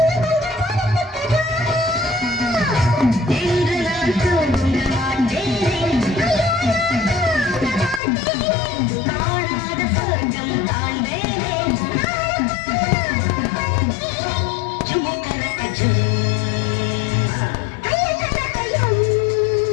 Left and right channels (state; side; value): drops out; right; at 8.0 s